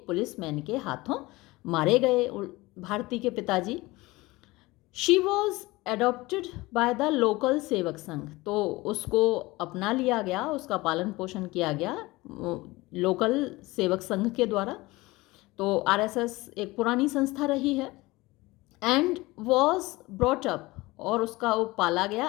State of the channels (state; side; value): quieter; right; 21.0 dB